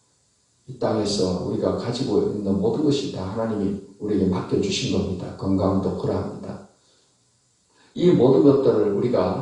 이 땅에서 우리가 가지고 있는 모든 것이 다 하나님이 우리에게 맡겨주신 겁니다. 건강도 그러합니다. 이 모든 것들을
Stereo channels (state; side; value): identical; both; correlation 1.00